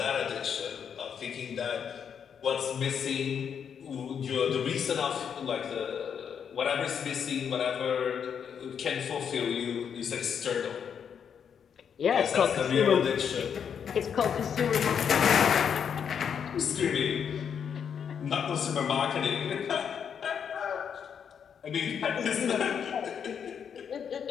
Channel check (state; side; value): quieter; right; 7.6 dB